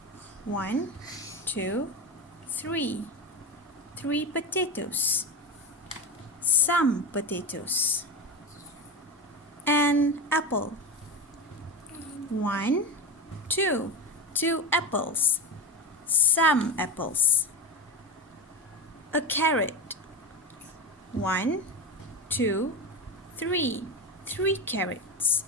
1, 2, 3. 3 potatoes. Some potatoes. An apple. 1, 2. 2 apples. Some apples. A carrot. 1, 2, 3. 3 carrots.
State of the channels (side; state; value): both; normal; correlation 0.20